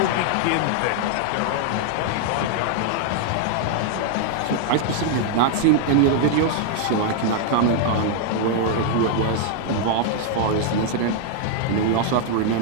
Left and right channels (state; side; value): different; both; correlation 0.00